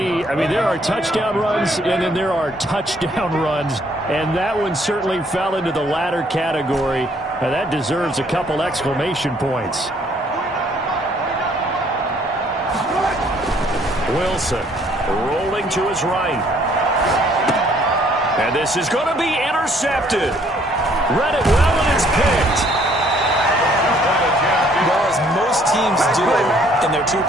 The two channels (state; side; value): normal; both; correlation 0.63